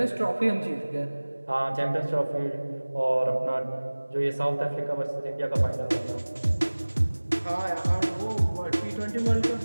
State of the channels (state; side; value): inverted; both; correlation -1.00